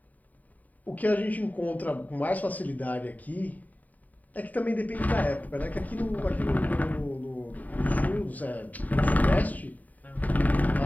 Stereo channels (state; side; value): late; right; 0.076 ms